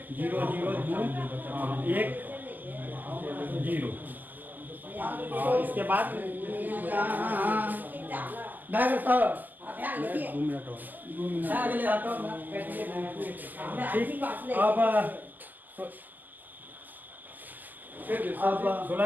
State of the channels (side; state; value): left; late; 0.085 ms